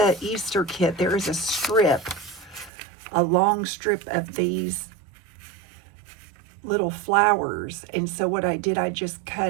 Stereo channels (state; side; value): drops out; left; at 2.7 s